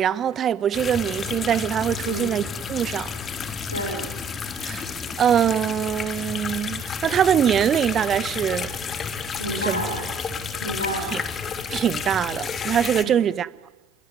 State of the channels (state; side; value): quieter; left; 5.1 dB